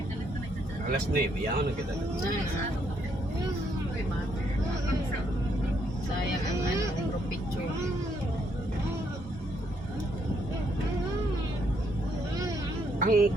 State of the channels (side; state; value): both; normal; correlation 0.73